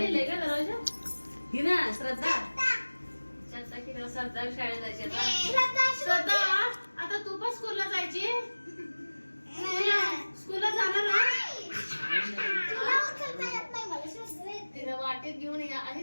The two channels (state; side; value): inverted; both; correlation -1.00